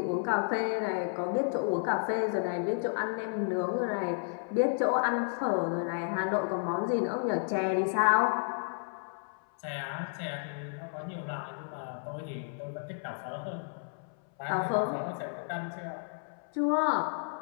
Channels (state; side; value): silent; right; 56 dB below the other